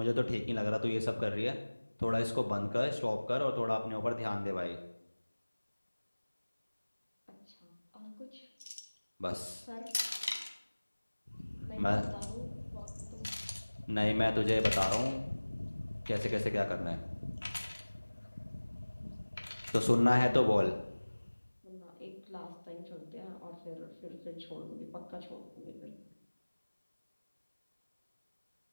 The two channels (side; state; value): both; inverted; correlation -1.00